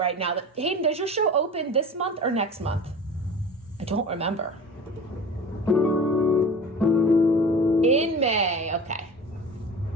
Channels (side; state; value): both; normal; correlation 0.37